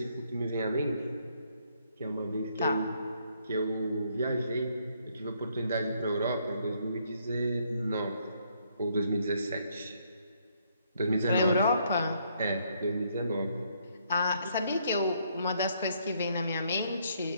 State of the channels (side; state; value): both; inverted; correlation -0.70